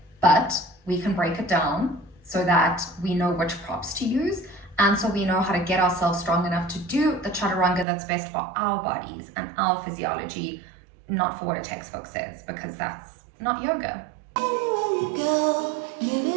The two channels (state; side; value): drops out; left; at 7.9 s